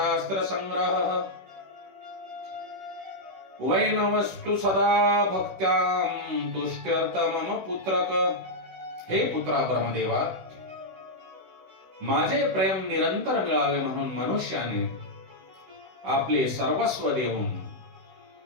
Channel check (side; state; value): left; late; 16 ms